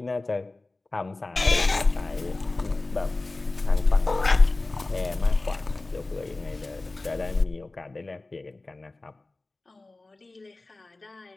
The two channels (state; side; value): quieter; right; 3.1 dB